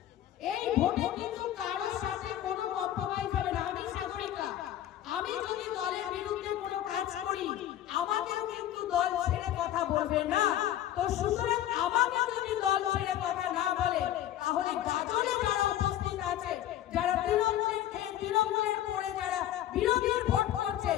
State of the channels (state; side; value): quieter; right; 12.3 dB